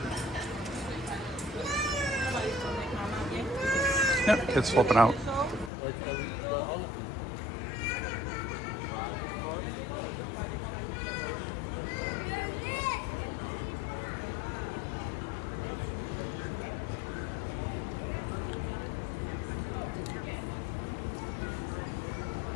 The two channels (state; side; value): drops out; right; at 5.7 s